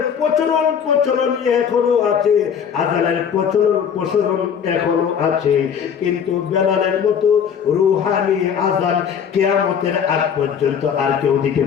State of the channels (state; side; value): quieter; right; 7.6 dB